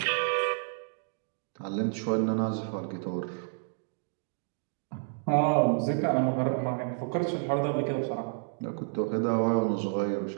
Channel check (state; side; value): silent; left; digital silence